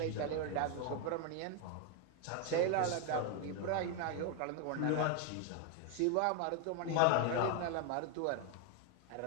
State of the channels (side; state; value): both; different; correlation 0.01